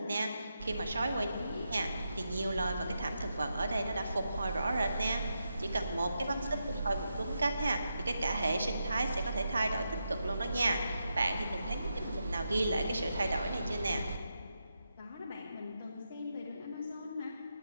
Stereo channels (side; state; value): both; inverted; correlation -0.85